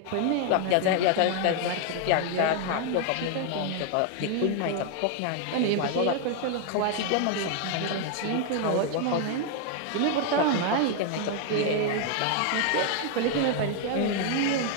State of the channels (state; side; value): different; both; correlation 0.00